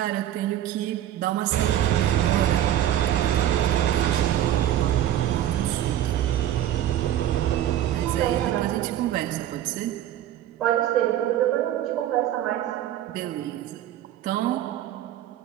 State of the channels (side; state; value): left; quieter; 12.0 dB